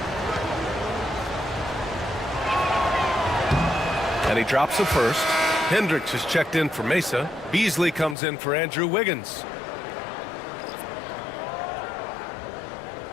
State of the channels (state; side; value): drops out; right; at 8.2 s